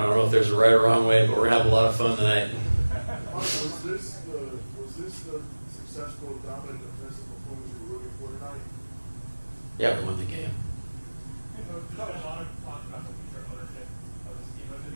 know if there's a right or wrong way, but we're gonna have a lot of fun tonight. Was this the successful, dominant defensive performance you were looking for tonight? Yeah, we won the game.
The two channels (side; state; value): both; inverted; correlation -1.00